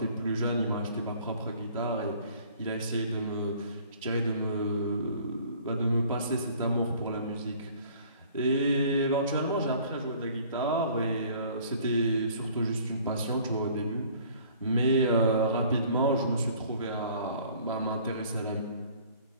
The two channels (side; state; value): both; inverted; correlation -0.54